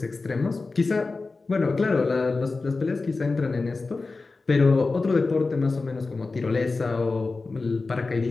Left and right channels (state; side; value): quieter; right; 3.8 dB